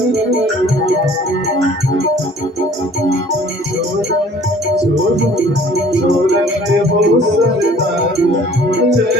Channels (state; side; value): normal; both; correlation 0.53